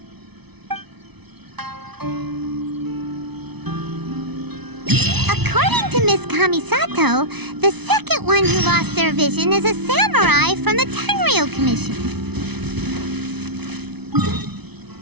According to Miss Kamisato, the second one who lost their vision is a samurai from the Tenryou Commission.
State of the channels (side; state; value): left; late; 0.99 ms